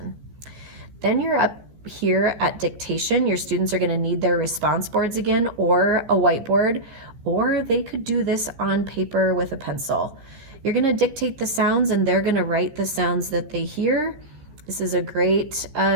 Then you're up here at dictation, your students are going to need their response boards again, or a whiteboard, or they could do this on paper with a pencil. You're going to dictate the sounds and they're going to write the sounds that they hear. This is a great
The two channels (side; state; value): left; late; 14 ms